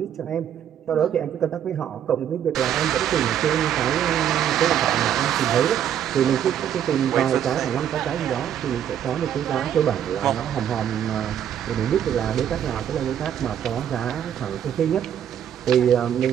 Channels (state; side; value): quieter; left; 9.7 dB